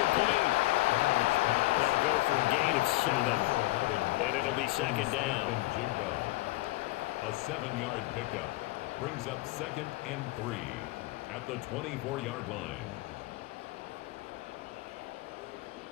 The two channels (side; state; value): right; quieter; 20.0 dB